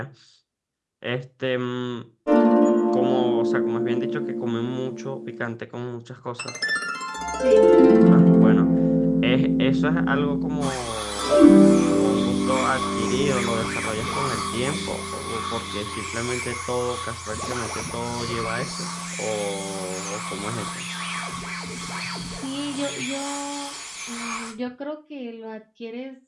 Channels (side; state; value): both; identical; correlation 1.00